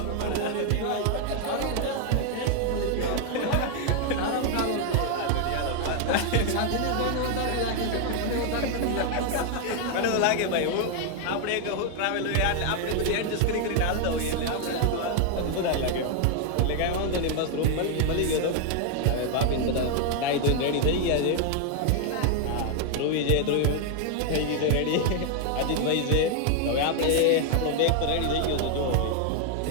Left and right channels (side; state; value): both; different; correlation 0.00